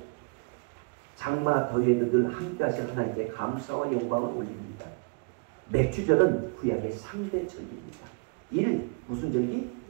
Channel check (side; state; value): left; quieter; 34.9 dB